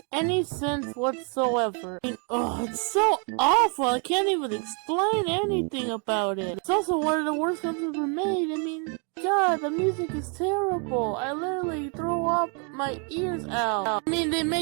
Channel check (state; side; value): quieter; left; 38.2 dB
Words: any sense whatsoever. It's so awful, I can't even explain anything about it. It's also one of the worst films ever made. God, the music is terrible. I literally throw up my ears out. They